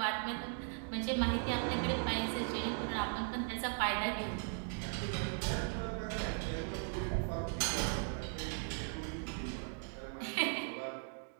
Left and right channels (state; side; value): silent; left; 52 dB below the other